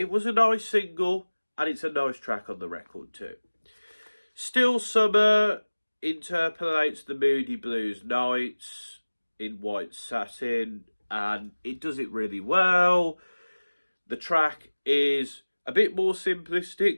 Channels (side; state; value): both; inverted; correlation -1.00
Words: was a nice single, and it's a nice track on the record too. Still Summer interpolates the Moody Blues Nights in white satin, and it does it really well. The track is a bit more